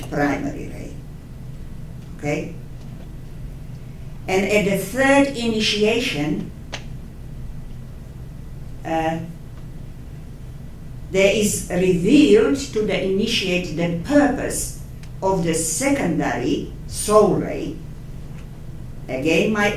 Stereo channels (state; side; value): identical; both; correlation 1.00